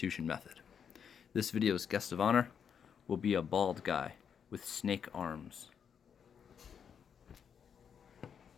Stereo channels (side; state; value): right; quieter; 7.5 dB